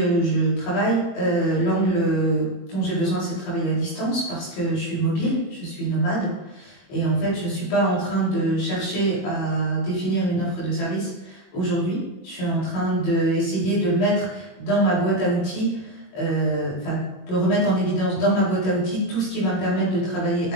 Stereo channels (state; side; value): late; right; 21 ms